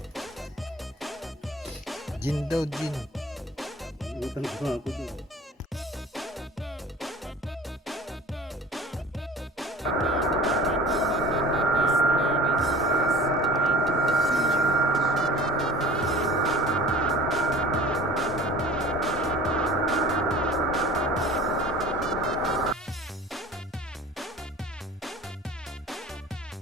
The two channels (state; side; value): normal; both; correlation 0.42